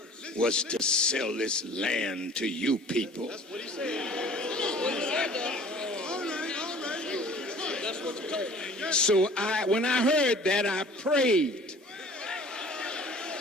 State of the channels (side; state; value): both; normal; correlation 0.49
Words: was to sell this land to you people." That's what he said. So when I heard that, I prayed.